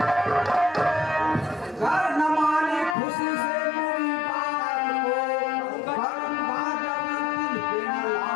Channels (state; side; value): drops out; right; at 3.0 s